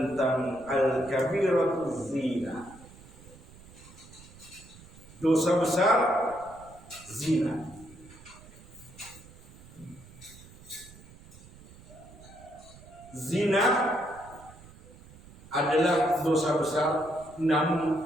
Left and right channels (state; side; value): noise; right; rumble, 21 dB below the sound